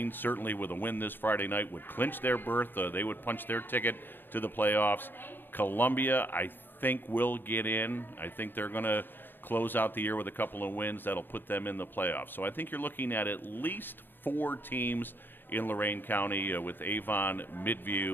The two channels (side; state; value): right; late; 0.096 ms